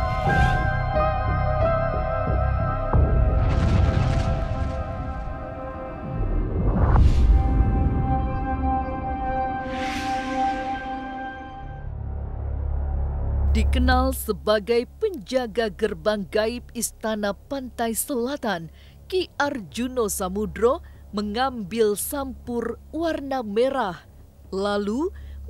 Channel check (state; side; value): identical; both; correlation 1.00